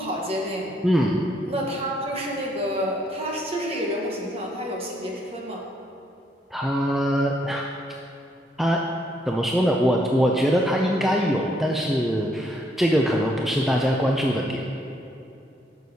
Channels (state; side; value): normal; both; correlation 0.71